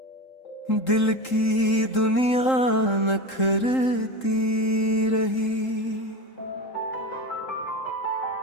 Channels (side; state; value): right; late; 3.8 ms